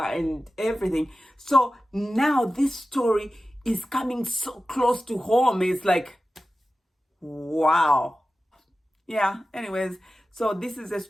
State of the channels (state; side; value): normal; both; correlation 0.94